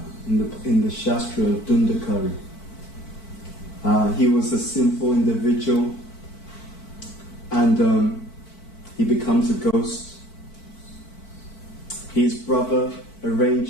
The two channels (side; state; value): right; late; 4.5 ms